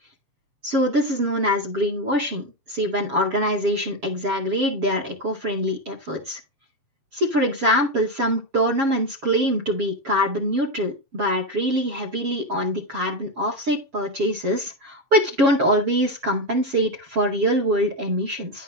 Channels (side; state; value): left; late; 7.3 ms